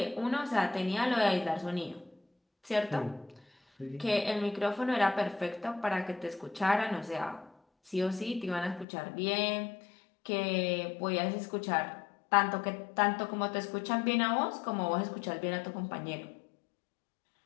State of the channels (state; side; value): drops out; right; at 8.8 s